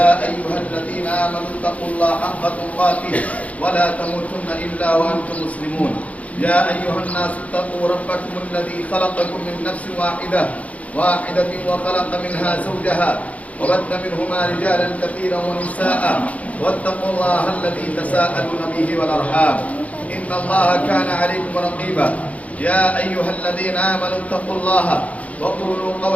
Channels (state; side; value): late; right; 0.068 ms